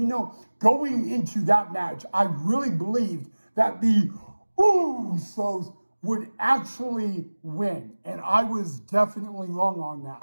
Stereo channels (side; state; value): both; inverted; correlation -1.00